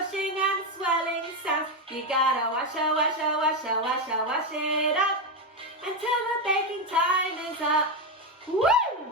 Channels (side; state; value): both; normal; correlation 0.09